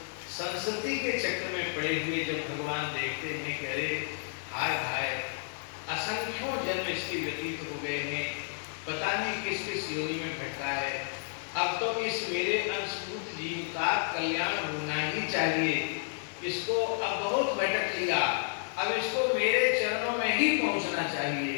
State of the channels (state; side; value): silent; right; digital silence